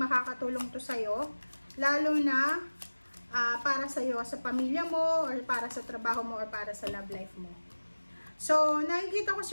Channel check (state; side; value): inverted; both; correlation -1.00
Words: to sa'yo, lalo na para sa'yo, sa pamilya mo, or para sa trabaho mo, or para sa love life mo. So, nakikita ko